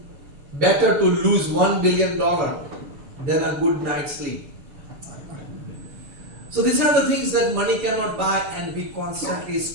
better to lose $1 billion than a good night's sleep. So these are the things that money cannot buy, and we constantly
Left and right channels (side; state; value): left; late; 7.1 ms